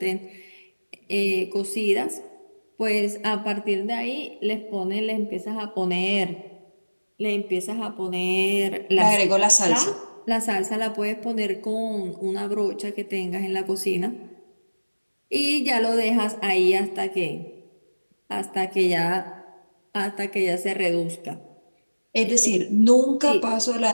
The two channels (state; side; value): inverted; both; correlation -1.00